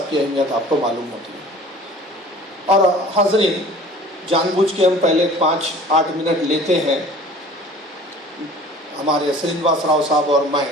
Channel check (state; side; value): normal; both; correlation 0.46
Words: की अहमियत आपको मालूम होती है। और हाज़रीन, जानबूझ के हम पहले 5-8 मिनट लेते हैं हमारे श्रीनिवास राव साहब और मैं।